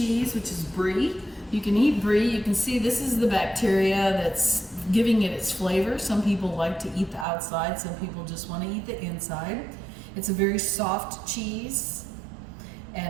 which is brie. You can eat brie. You can see this is the bacteria that's giving it its flavor. Some people like to eat the outside. Some people just want to eat the inside. It's a very soft cheese,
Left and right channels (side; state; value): left; drops out; at 7.2 s